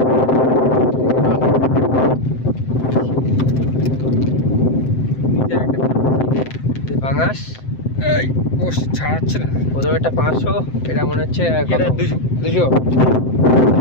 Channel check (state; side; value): late; right; 7.7 ms